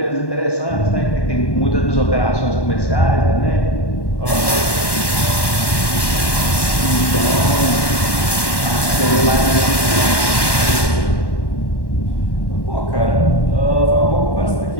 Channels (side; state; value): right; late; 1.1 ms